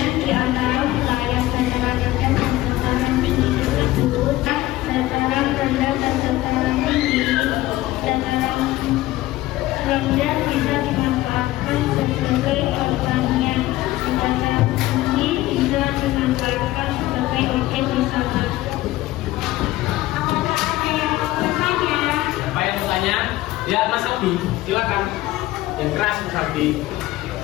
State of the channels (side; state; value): right; quieter; 16.7 dB